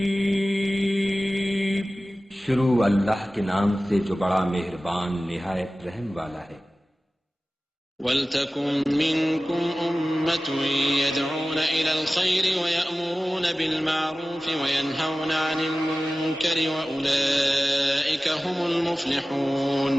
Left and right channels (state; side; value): normal; both; correlation 0.96